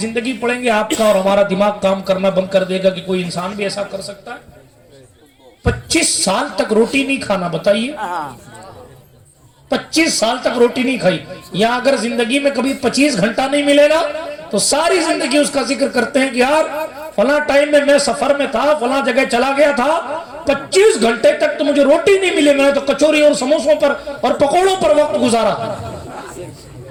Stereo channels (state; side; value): identical; both; correlation 1.00